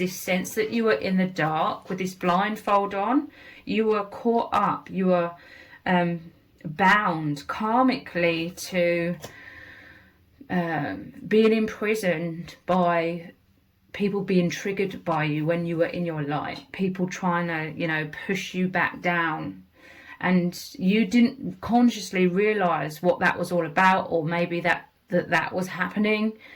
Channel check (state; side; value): identical; both; correlation 1.00